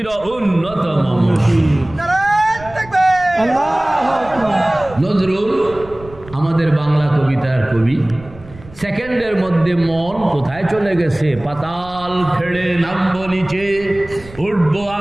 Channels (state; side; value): noise; right; rumble, 19 dB below the sound